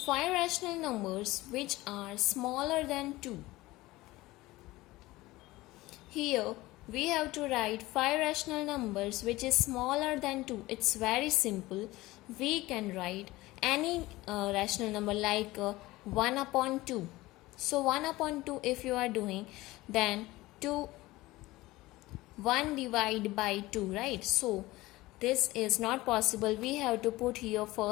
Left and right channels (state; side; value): quieter; right; 19.0 dB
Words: 5 rational numbers which are smaller than 2. Here we have to write 5 rational numbers which is smaller than 2. It's very simple. We can write any rational number like 1 upon 2. So 1 upon 2 if you are doing, then 1 divided by 2, right? So this is not possible. We have to put here